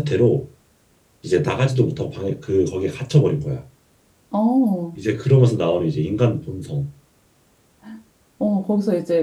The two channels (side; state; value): both; identical; correlation 1.00